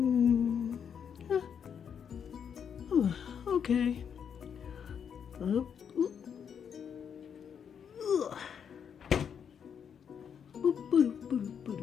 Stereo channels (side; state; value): right; quieter; 7.6 dB